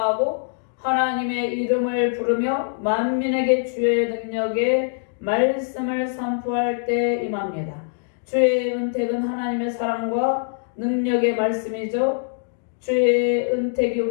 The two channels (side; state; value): right; silent; digital silence